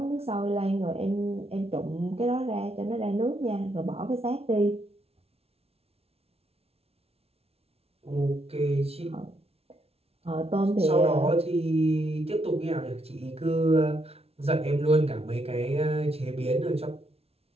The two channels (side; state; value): left; late; 0.30 ms